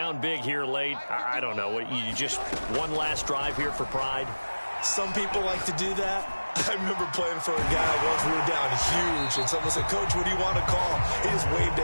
big here late. I don't know. You just one last drive here for pride? Some people like to do that. I remember playing for a guy once we were down huge, and someone said, "Coach, what do you want to call?" He just waved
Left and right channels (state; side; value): inverted; both; correlation -1.00